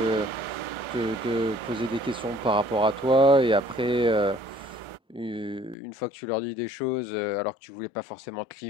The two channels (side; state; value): right; drops out; at 5.8 s